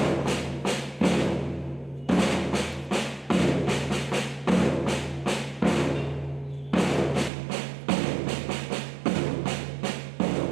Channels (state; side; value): drops out; left; at 7.3 s